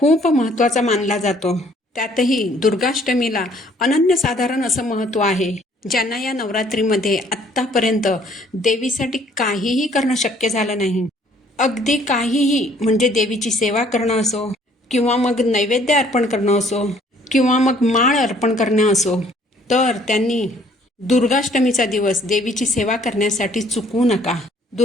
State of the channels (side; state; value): both; normal; correlation 0.60